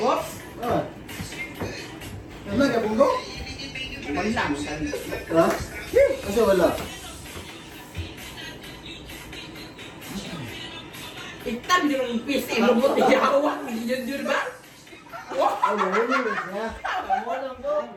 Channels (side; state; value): both; identical; correlation 1.00